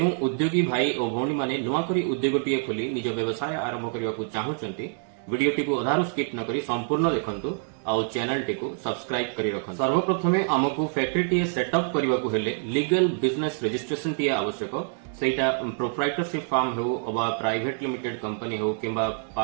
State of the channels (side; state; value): left; silent; 61 dB below the other